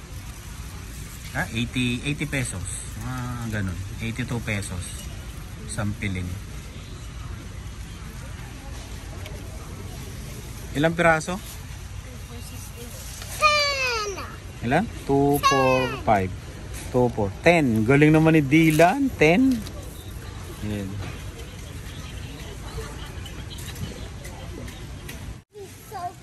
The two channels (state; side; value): identical; both; correlation 1.00